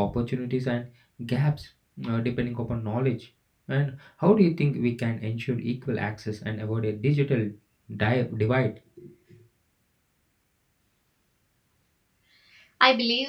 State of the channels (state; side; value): identical; both; correlation 1.00